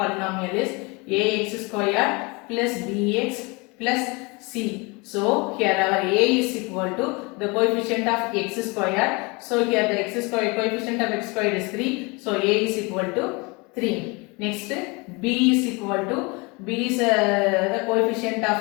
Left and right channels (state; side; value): quieter; right; 27.8 dB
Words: is ax squared plus bx plus c. So here our a is equal to the coefficient of x squared. So here the x squared, coefficient of x squared is 3. So a is equal to 3. Next, b is equal to, b is the coefficient